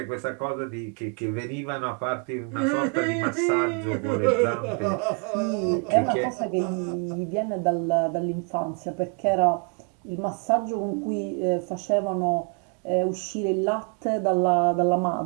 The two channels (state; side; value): quieter; left; 39.1 dB